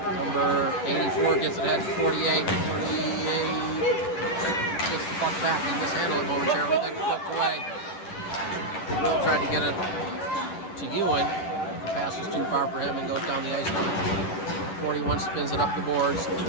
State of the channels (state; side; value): late; right; 10 ms